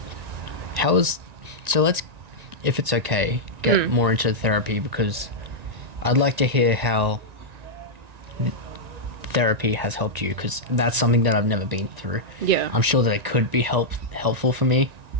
So let's, if it's okay, get more into therapy, because I'd like to hear how therapy has helped you, because that's something that I've never been through. Yeah. I'm sure that it could be helpful for me.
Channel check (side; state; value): left; late; 1.9 ms